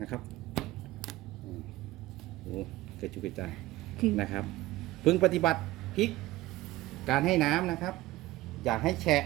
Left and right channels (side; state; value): left; quieter; 17.3 dB